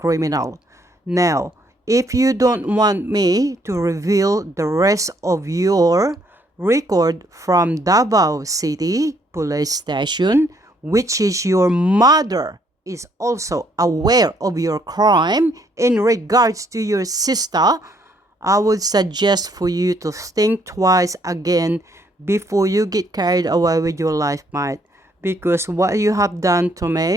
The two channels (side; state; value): both; normal; correlation 0.68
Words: Now, if you don't want me to reveal the rest of your record from Davao City Police Station, which is your mother is also aware of your crime in regards to your sister, I would suggest for you to think twice again before you get carried away with your life, mate. Because what you have done to